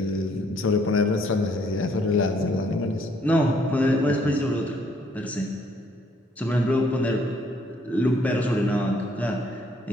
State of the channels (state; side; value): normal; both; correlation 0.66